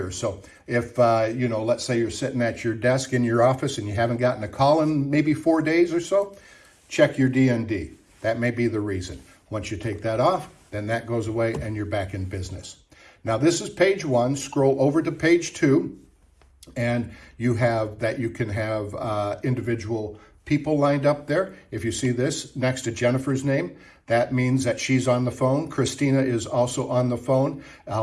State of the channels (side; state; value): both; identical; correlation 1.00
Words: So if, let's say you're sitting at your desk in your office and you haven't gotten a call in maybe 4 days or so, check your DND. That may be the reason. Once you take that off, then that goes away and you're back in business. Now this is page 1. Scroll over to page 2, and you have that you can have individual people lined up there. If you see this next to Jennifer's name, that means that she's on the phone. Christina is also on the phone.